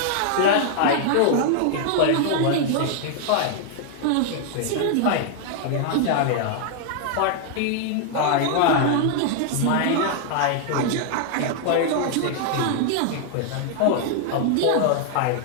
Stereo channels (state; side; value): different; both; correlation 0.00